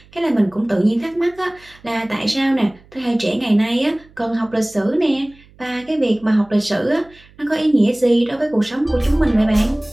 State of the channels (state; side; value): noise; right; hum, 27 dB below the sound